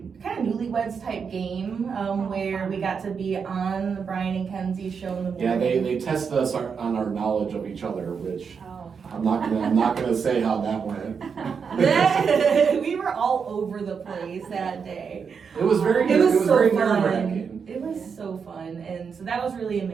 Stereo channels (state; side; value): quieter; left; 6.2 dB